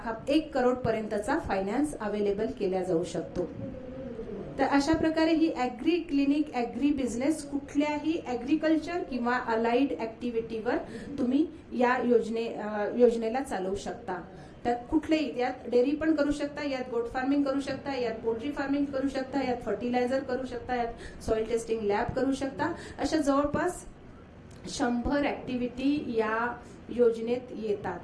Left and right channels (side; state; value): both; identical; correlation 1.00